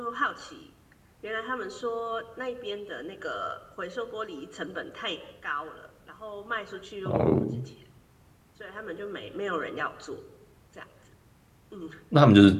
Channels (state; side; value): identical; both; correlation 1.00